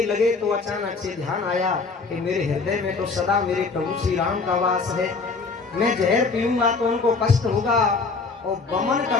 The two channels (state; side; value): quieter; right; 4.3 dB